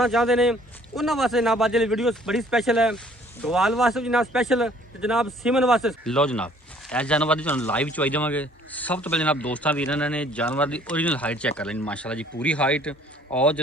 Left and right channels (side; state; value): both; normal; correlation 0.57